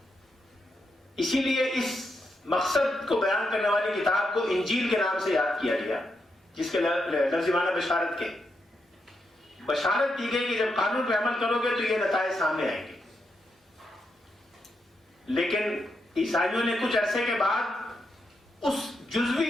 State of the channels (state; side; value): normal; both; correlation 0.83